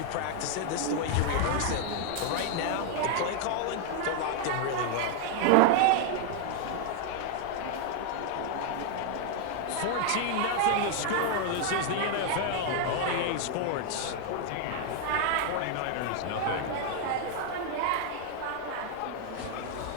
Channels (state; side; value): different; both; correlation 0.00